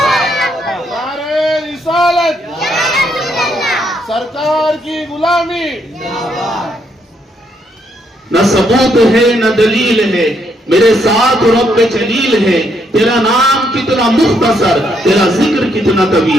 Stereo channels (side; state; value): both; normal; correlation 0.74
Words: نعرہ رسالت، سرکار کی غلامی، نہ ثبوت ہے نہ دلیل ہے، میرے ساتھ رب جلیل ہے۔ تیرا نام کتنا مختصر، تیرا ذکر کتنا